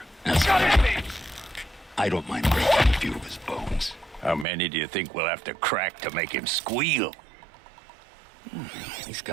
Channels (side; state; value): left; drops out; at 4.5 s